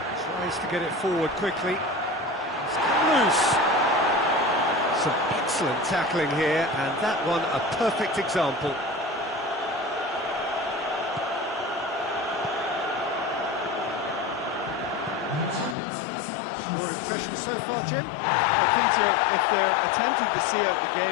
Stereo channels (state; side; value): drops out; right; at 15.8 s